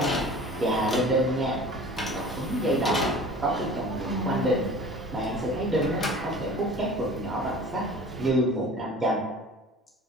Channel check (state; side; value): normal; both; correlation 0.42